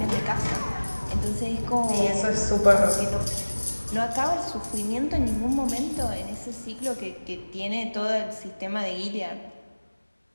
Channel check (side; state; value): both; inverted; correlation -1.00